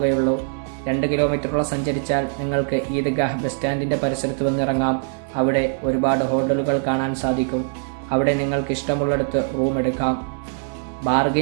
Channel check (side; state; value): left; silent; digital silence